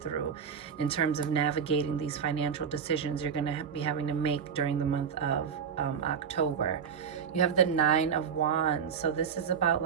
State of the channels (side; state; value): left; quieter; 7.0 dB